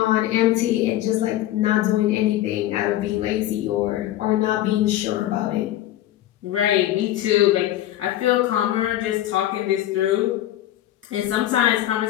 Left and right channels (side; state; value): right; quieter; 13.6 dB